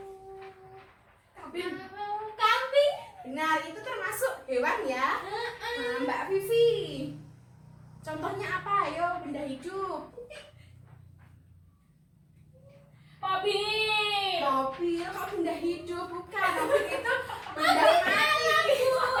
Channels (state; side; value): identical; both; correlation 1.00